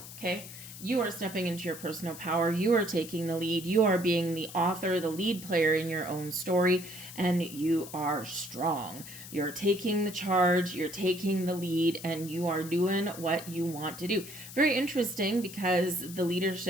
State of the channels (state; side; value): noise; left; hiss, 14 dB below the sound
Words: okay? You are stepping into your personal power. You are taking the lead. You are being the author, the lead player in your own story, and you are strong. You're taking the charge, you're taking the lead, and you are doing what you want to do. Very interesting, because the